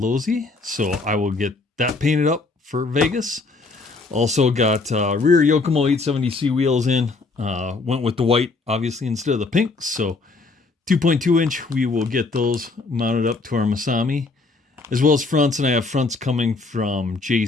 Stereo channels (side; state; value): right; quieter; 3.8 dB